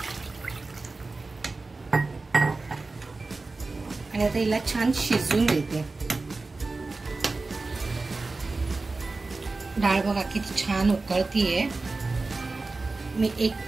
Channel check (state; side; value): quieter; left; 3.6 dB